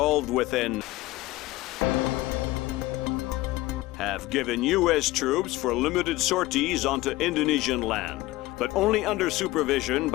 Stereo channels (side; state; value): right; quieter; 18.3 dB